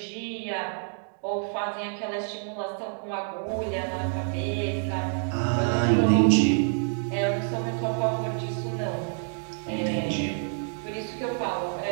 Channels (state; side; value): silent; left; 60 dB below the other